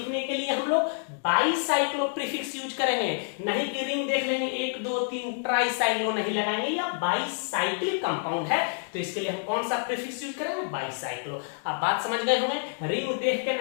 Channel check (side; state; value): right; silent; digital silence